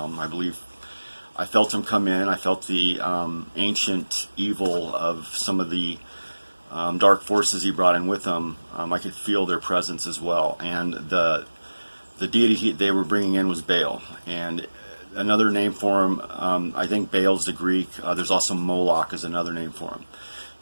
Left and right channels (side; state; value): both; inverted; correlation -1.00